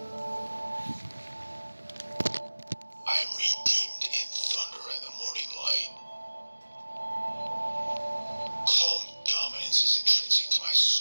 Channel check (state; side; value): inverted; both; correlation -1.00